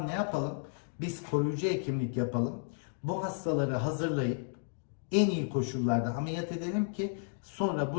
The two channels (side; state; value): right; silent; digital silence